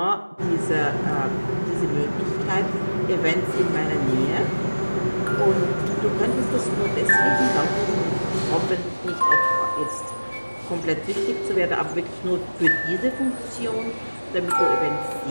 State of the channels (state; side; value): inverted; both; correlation -1.00